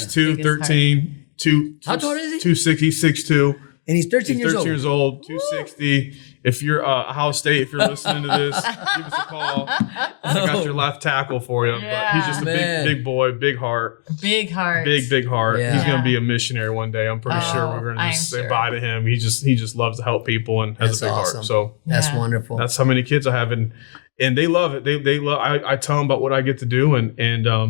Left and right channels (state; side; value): silent; right; digital silence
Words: 13, 2. How tall is he? 260, 6'2". And he's 13 He's years 13 old. years old, 260. If you're Ohio State, if you're listening to this, give us a call. I got your left tackle for you. Yeah. But he's just a big boy, big heart. Big heart. Big heart. Yeah. He's gonna be a missionary one day. I'm pretty sure we're gonna just say bye to him. He just loves to help people and has a big heart. So That's wonderful. that's how many kids I have, and they love it. They love. I tell them about what I get to do, and